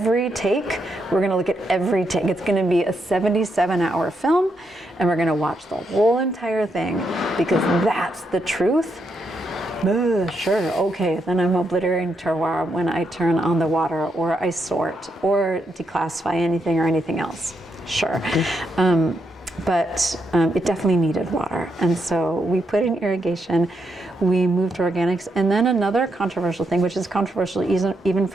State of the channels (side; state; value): both; normal; correlation 0.80